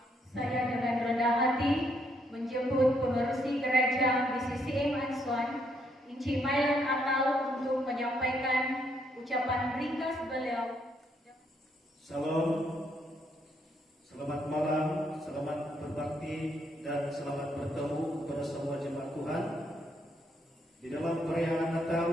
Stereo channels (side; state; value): both; normal; correlation 0.73